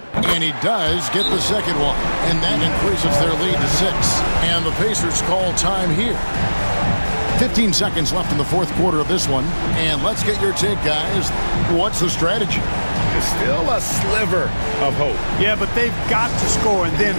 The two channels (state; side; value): inverted; both; correlation -1.00